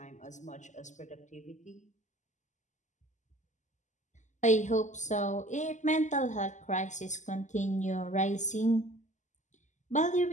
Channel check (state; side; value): late; right; 0.35 ms